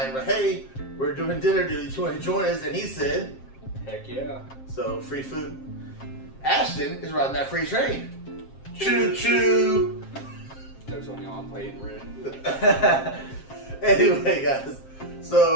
But hey, we're doing Dinner Dudes. You want to join us? And he said, Heck yeah. so free food. Ashton is riding that free train. Choo choo. Jokes on y'all, I'm playing red. Anyway, guys,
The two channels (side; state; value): right; late; 7.5 ms